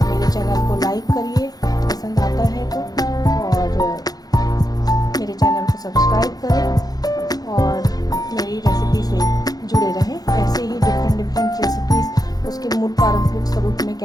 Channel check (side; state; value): right; late; 0.19 ms